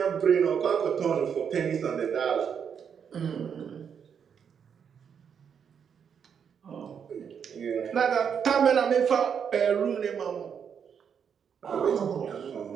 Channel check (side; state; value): left; quieter; 7.4 dB